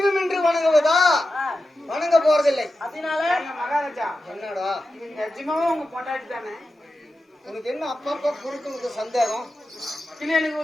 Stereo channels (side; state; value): both; normal; correlation 0.91